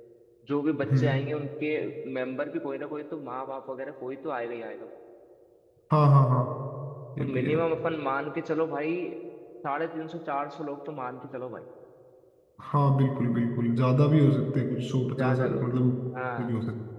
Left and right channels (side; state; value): both; identical; correlation 1.00